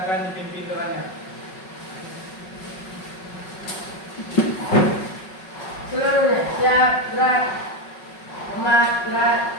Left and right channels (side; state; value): right; late; 5.4 ms